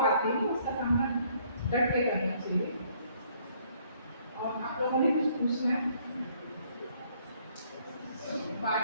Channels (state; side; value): inverted; both; correlation -0.64